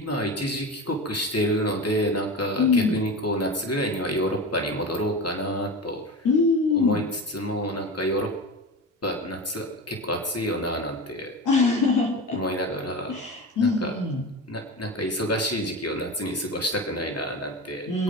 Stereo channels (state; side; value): normal; both; correlation 0.27